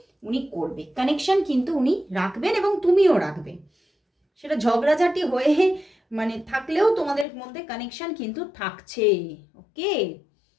উনি করবে, কানেকশন কিন্তু উনি রাখবেন এবং তুমিও রাখবে। সেটা ঝগড়াঝাটি হয়ে মানে থাকলেও তোমাদের মধ্যে কানেকশন কিন্তু থাকছে। ওকে,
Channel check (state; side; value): drops out; right; at 7.2 s